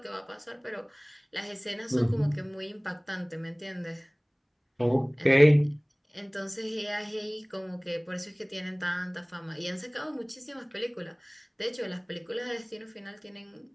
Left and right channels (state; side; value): identical; both; correlation 1.00